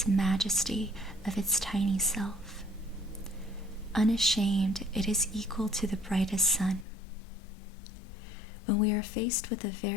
majesty of its tiny self. Unashamed, it is equal to the brightest sun. When we are faced with a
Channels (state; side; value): drops out; right; at 6.9 s